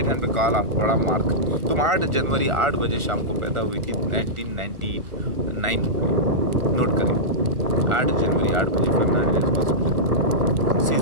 हैंड पे काला बड़ा मार्क। तुम 8 जनवरी 8 बजे शाम को पैदा हुई थी 1999 में, नोट करें। 8 जनवरी 8 बजे फर्नांडिस हॉस्पिटल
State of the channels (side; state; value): left; late; 1.4 ms